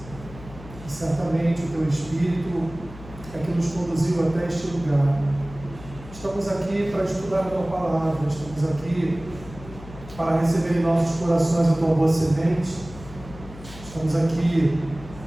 E certamente o teu Espírito é que nos conduziu até este lugar. Estamos aqui para estudar a tua palavra, estamos aqui para receber em nossos corações a tua boa semente. Estamos aqui,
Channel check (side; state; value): left; noise; hum, 16 dB below the sound